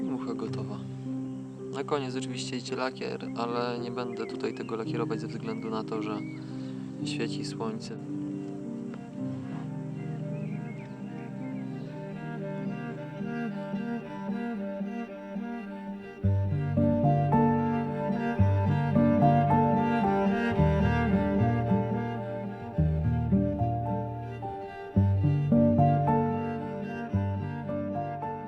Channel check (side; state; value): both; identical; correlation 1.00